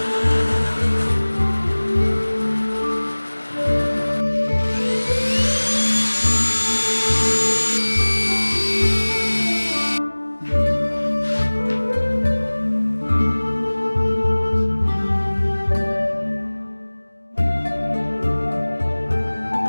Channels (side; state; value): both; inverted; correlation -1.00